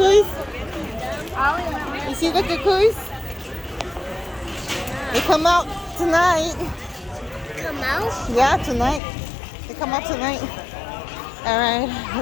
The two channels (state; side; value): drops out; right; at 9.0 s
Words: You see the cuckoos? They come out tonight. Come out? Yeah, tonight. They come out tonight. Alright,